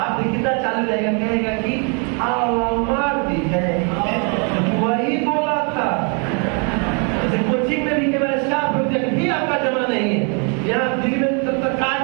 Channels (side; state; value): left; quieter; 37.2 dB